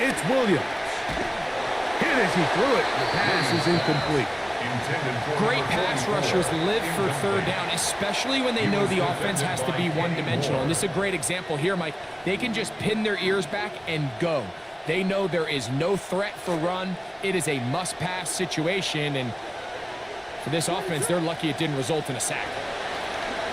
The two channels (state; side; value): identical; both; correlation 1.00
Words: it's Williams. Hit as he threw it. The pass is incomplete. Great pass rushers live for third down, especially when they know the offense has to be one-dimensional. And this is a great example here, Mike. They can just pin their ears back and go. They know there is no threat for run. It is a must-pass situation, and for this offense, they're lucky it didn't result in a sack.